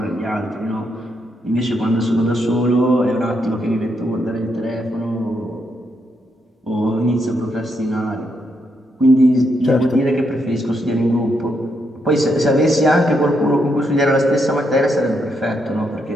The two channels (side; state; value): both; normal; correlation 0.79